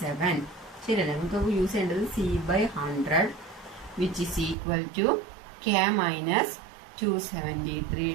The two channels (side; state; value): left; drops out; at 4.5 s